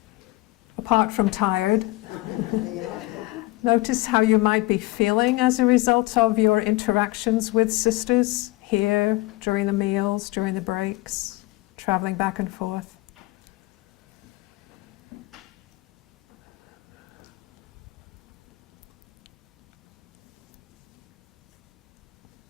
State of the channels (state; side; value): quieter; right; 20.0 dB